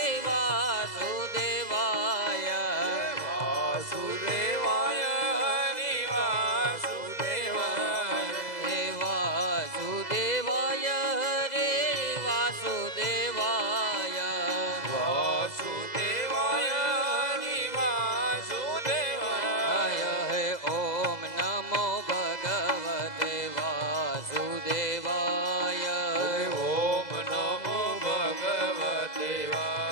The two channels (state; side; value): late; right; 2.0 ms